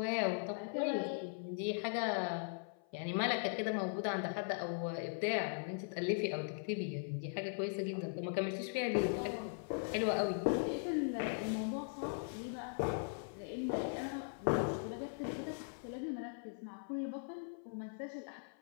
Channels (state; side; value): silent; right; 51 dB below the other